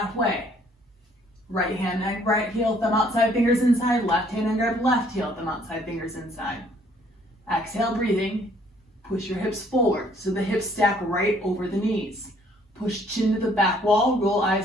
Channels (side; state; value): both; normal; correlation 0.62